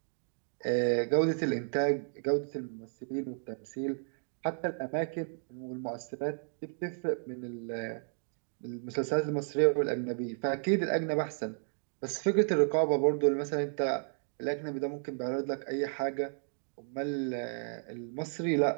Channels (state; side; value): silent; left; digital silence